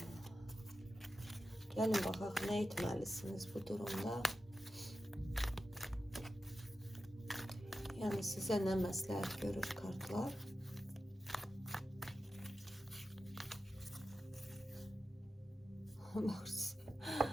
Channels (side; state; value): both; normal; correlation 0.92